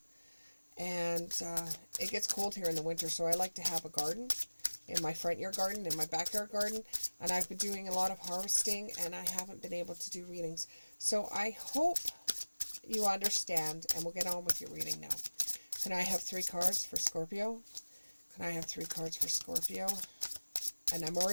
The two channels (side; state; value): both; inverted; correlation -1.00